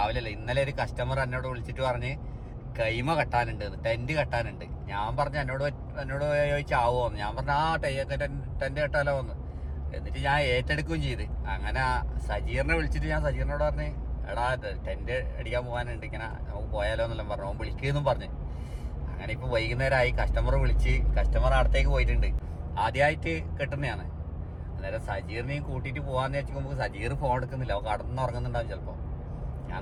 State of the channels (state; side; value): identical; both; correlation 1.00